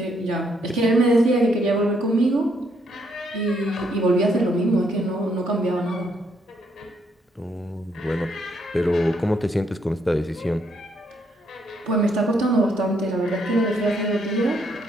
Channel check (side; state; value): both; normal; correlation 0.73